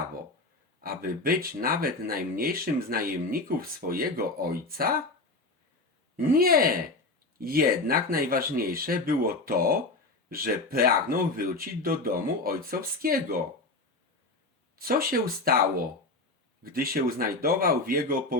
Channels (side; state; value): right; quieter; 3.1 dB